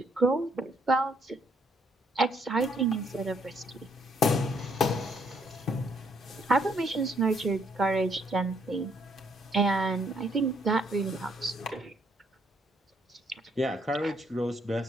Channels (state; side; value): normal; both; correlation 0.70